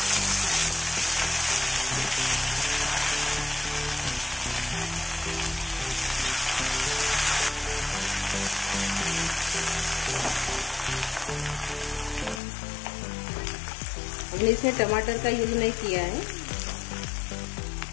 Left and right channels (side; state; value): right; drops out; at 12.4 s